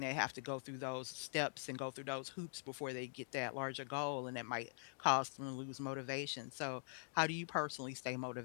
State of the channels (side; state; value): right; silent; digital silence